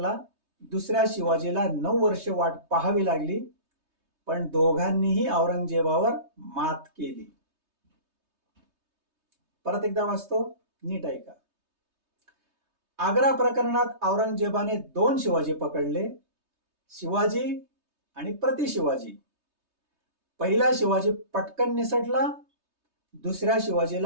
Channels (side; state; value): left; late; 3.2 ms